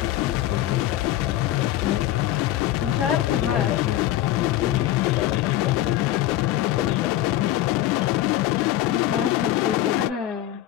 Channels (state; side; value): quieter; right; 13.8 dB